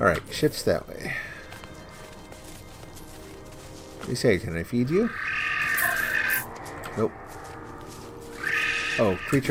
ship's that way. You say, can I feed you? Nope. Oh,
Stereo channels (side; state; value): both; identical; correlation 1.00